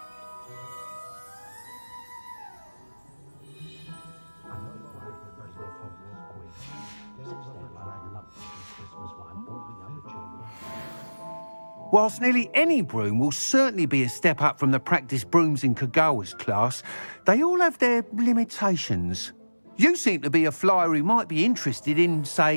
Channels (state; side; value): inverted; both; correlation -1.00